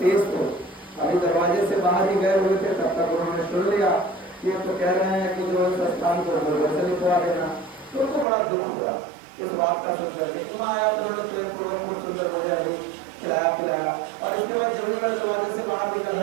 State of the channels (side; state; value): left; drops out; at 8.2 s